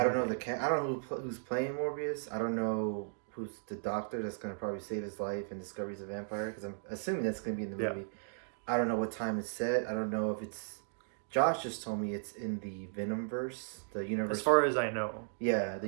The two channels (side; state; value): left; silent; digital silence